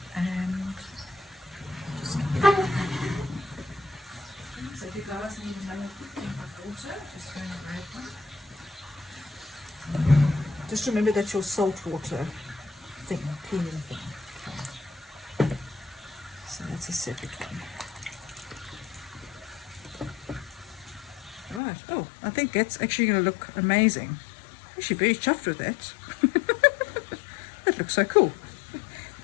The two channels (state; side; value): drops out; right; at 21.6 s